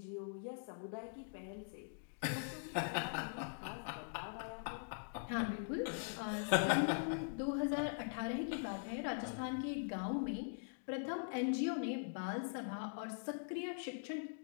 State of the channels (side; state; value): right; silent; digital silence